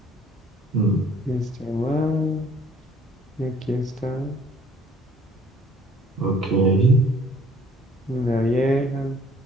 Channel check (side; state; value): both; normal; correlation 0.56